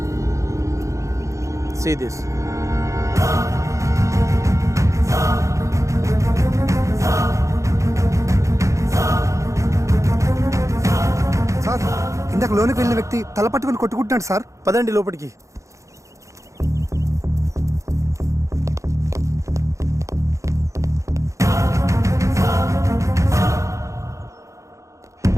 See this. సార్, ఇందాక లోనికి వెళ్ళిన వ్యక్తి తల పట్టుకుని కొట్టుకుంటున్నాడు సార్. పదండి లోపలికి.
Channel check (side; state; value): left; late; 0.15 ms